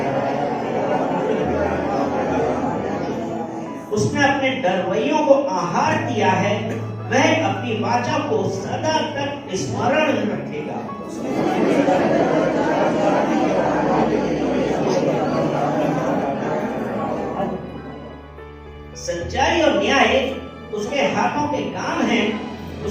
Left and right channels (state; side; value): identical; both; correlation 1.00